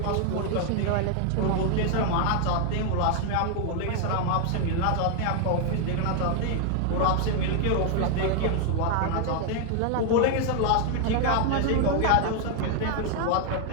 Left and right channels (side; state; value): both; different; correlation 0.00